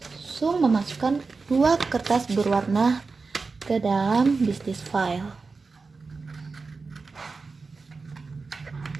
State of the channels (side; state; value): left; quieter; 4.3 dB